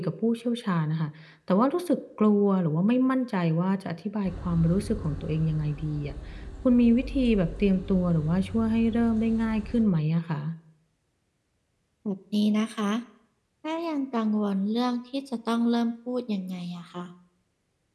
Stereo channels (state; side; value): identical; both; correlation 1.00